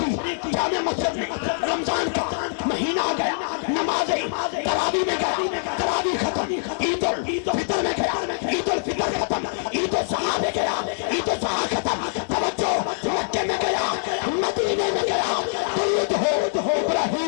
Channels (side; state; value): right; silent; digital silence